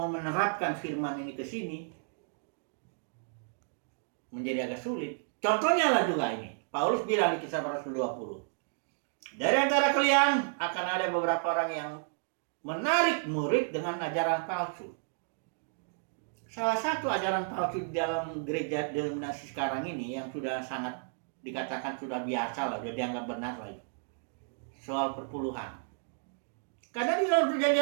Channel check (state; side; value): silent; left; digital silence